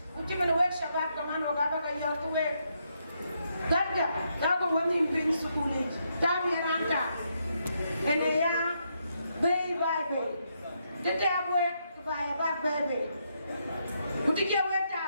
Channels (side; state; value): both; inverted; correlation -0.78